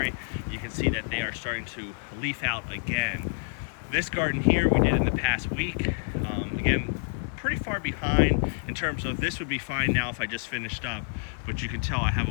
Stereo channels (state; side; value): silent; right; 59 dB below the other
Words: You can see that they are starting to leaf out again. This garden here we did in the past week. Again, pretty far behind in terms of this would be fine now if I just finished up, but you can tell I have